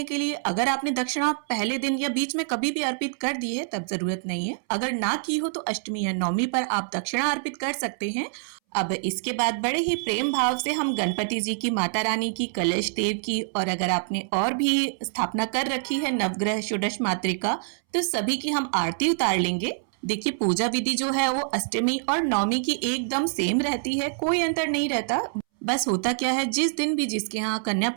के लिए अगर आपने दक्षिणा पहले दिन या बीच में कभी भी अर्पित कर दी है तब जरूरत नहीं है। अगर ना की हो तो अष्टमी या नवमी पर आप दक्षिणा अर्पित कर सकते हैं। अब इसके बाद बड़े ही प्रेम भाव से हम गणपति जी की, माता रानी की, कलश देव की और अगर आपने और भी स्थापना कर रखी है नवग्रह षोडश मातृका तो सभी की हम आरती उतार लेंगे। देखिए, पूजा विधि जो है वो अष्टमी और नवमी की एकदम सेम रहती है, कोई अंतर नहीं रहता। बस होता क्या है, जिस दिन भी जिसके यहाँ कन्या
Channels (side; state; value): left; silent; 61 dB below the other